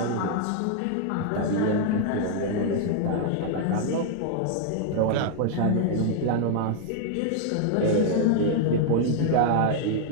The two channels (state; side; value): different; both; correlation 0.00